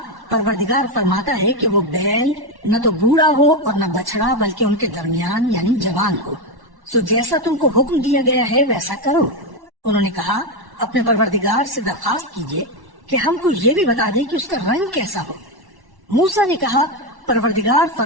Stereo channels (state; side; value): late; left; 1.1 ms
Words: پروردگار فرماتا ہے کہ وہ بیل نہ تو بوڑھا ہو اور نہ بچڑا بلکہ ان کے درمیان یعنی جوان ہو، سو جیسا تم کو حکم دیا گیا ہے ویسا کرو۔ انہوں نے کہا اپنے پروردگار سے درخواست کیجئے کہ ہم کو یہ بھی بتا دے کہ اس کا رنگ کیسا ہو۔ موسیٰ نے کہا پروردگار